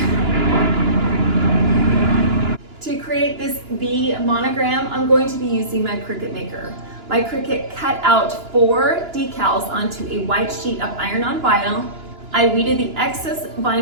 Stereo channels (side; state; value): left; late; 2.9 ms